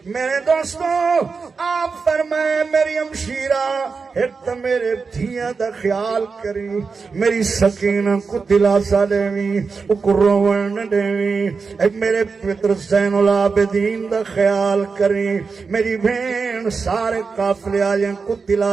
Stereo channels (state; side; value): quieter; left; 4.9 dB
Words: میرے دوستوں آپ فرمائے میری ہمشیرہ ایک تو میرے دھیاں دا خیال کری، میری سکینہ کو دلاسا دیویں، اکو روون نہ دیویں، ایک میرے پتر زین العابدین دا خیال کری، میری بہن سارے قافلے آجیں کو